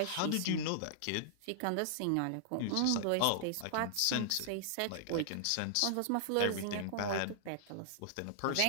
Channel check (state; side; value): different; both; correlation -0.01